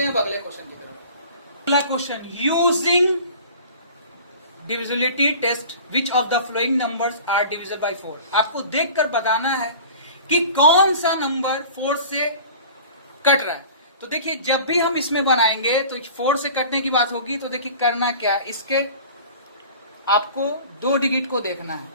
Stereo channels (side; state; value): both; inverted; correlation -0.42